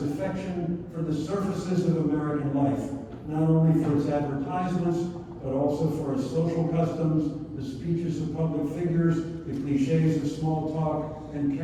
affection for the surfaces of American life, not only for its advertisements, but also for its social customs, the speeches of public figures, the cliches of small talk, and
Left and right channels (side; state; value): both; identical; correlation 1.00